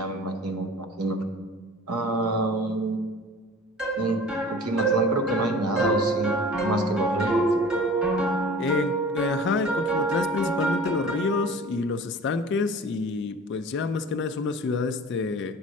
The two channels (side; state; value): both; normal; correlation 0.42